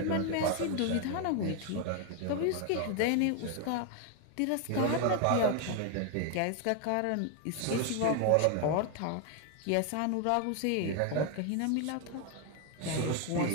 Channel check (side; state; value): both; different; correlation 0.01